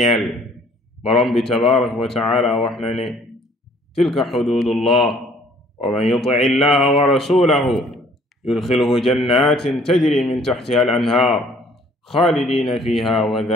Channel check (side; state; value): both; normal; correlation 0.58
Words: borom bi tabaraka wa taala wax na ne tilka xududullah wa man yuti illaha wa rasulahu yudxilhu jannatin tajri min taxtiha al anhaar xaalidina fiha wa